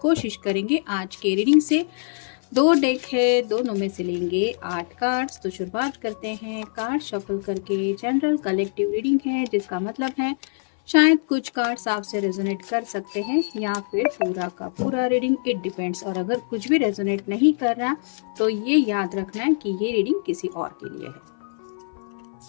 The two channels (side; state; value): right; silent; 59 dB below the other